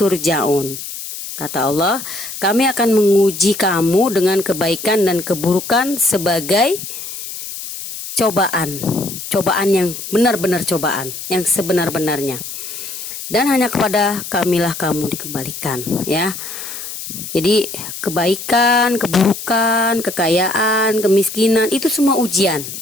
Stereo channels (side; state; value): left; noise; hiss, 9 dB below the sound